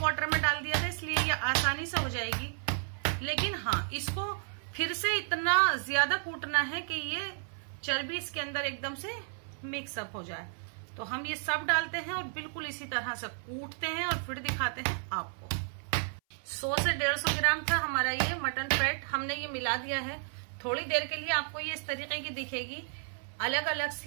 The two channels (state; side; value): silent; left; 56 dB below the other